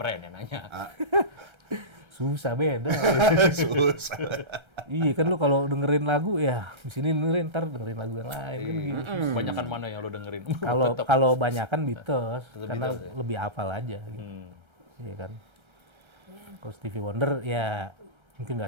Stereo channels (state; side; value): late; left; 1.3 ms